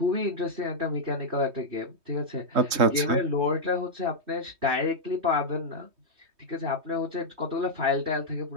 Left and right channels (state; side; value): late; left; 3.2 ms